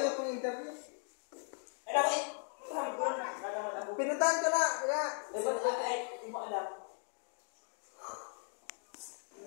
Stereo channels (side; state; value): right; silent; 53 dB below the other